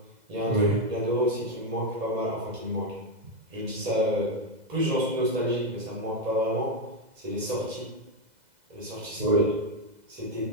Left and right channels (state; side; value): late; left; 2.0 ms